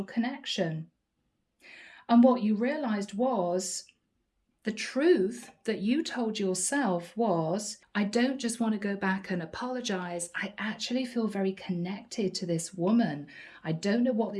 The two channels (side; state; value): both; identical; correlation 1.00